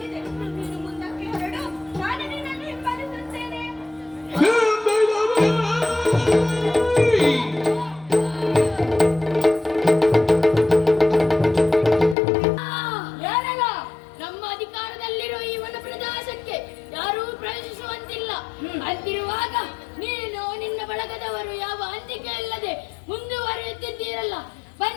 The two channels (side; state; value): right; drops out; at 12.2 s